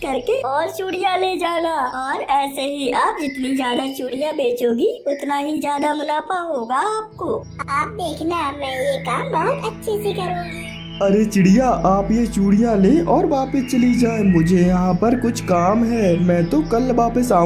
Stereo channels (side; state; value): both; identical; correlation 1.00